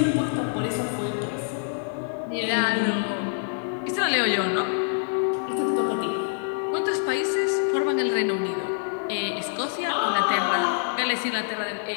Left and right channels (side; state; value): right; silent; 61 dB below the other